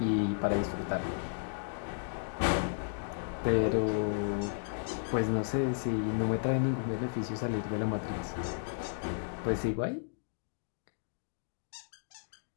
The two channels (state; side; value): silent; right; digital silence